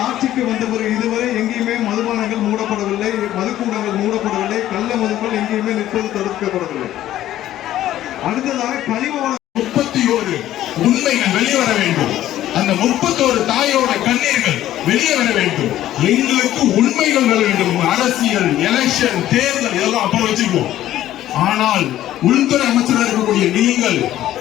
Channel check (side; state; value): right; quieter; 13.2 dB